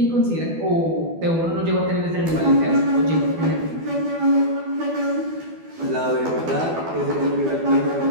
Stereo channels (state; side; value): late; left; 12 ms